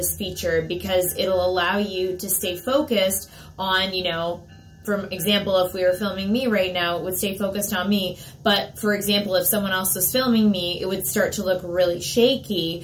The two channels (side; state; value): both; identical; correlation 1.00